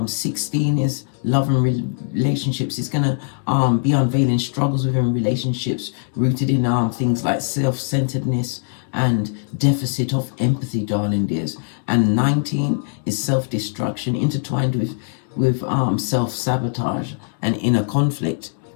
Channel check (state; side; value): silent; right; 65 dB below the other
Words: 16 is love and relationships. It's gonna be unveiling struggles within relationships rooted in things like self-centeredness and deficit of empathy, darling dears. And 19 is self-destruction intertwined with self-sabotage and inner conflict.